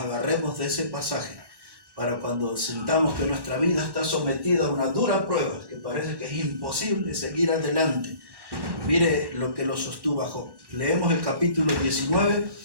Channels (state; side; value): late; left; 1.1 ms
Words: de ese pasaje para cuando sintamos que nuestra vida está sometida a una dura prueba, que parece que es imposible seguir adelante. Mire lo que lo sostuvo a Job. Leemos el capítulo 19